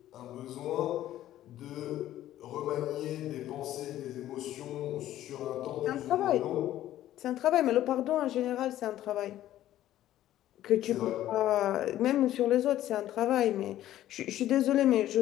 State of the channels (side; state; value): right; quieter; 13.2 dB